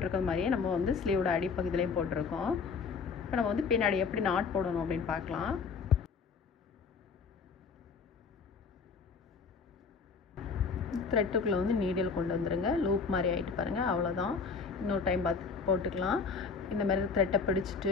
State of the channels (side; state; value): right; quieter; 5.2 dB